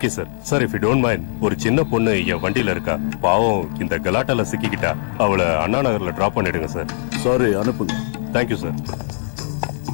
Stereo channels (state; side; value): silent; right; 64 dB below the other